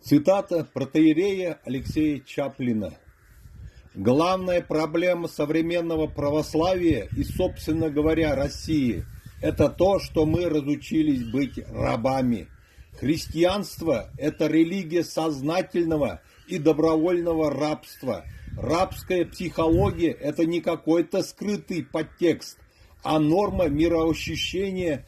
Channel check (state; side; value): identical; both; correlation 1.00